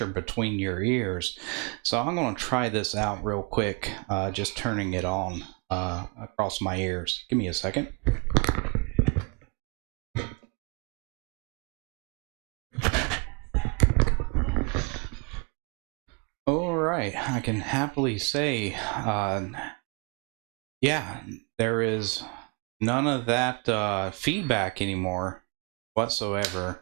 between your ears. So I'm going to try this out real quick, just turning it on across my ears. Give me a second. All right, I can happily say, yeah, there is none of that feedback anymore whatsoever.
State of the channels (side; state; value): left; quieter; 31.7 dB